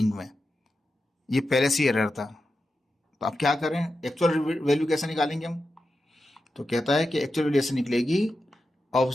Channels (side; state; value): both; normal; correlation 0.90